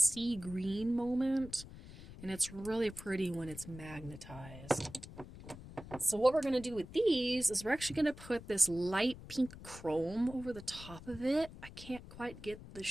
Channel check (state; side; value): noise; left; rumble, 15 dB below the sound